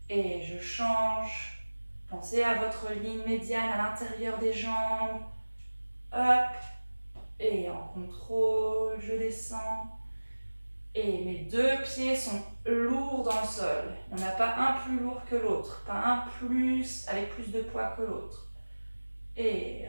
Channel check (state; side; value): inverted; both; correlation -1.00